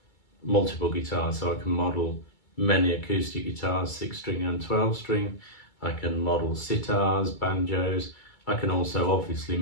multiple guitars, so I can model many acoustic guitars, 6-string and 12-string. I can model sitars, banjos. I can also obviously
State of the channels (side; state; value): right; late; 2.3 ms